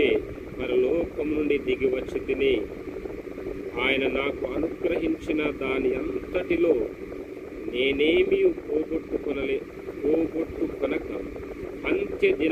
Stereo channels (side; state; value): both; identical; correlation 1.00